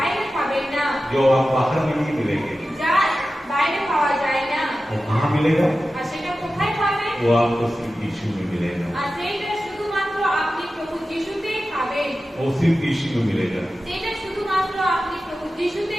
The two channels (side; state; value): both; normal; correlation 0.94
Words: পাবেন না, जो आप बाहर में नहीं मिलेंगे, যা বাইরে পাওয়া যায় না। वो कहाँ मिलेगा? আর সেটা কোথায় পাবেন? वो आपको सिर्फ यीशु में मिलेगा, আর সেইটা শুধুমাত্র আপনি প্রভু যিশুতেই পাবেন, वो सिर्फ यीशु में मिलेगा। সেটা শুধুমাত্র আপনি প্রভু